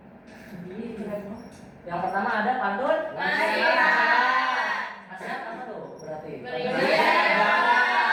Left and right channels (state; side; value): identical; both; correlation 1.00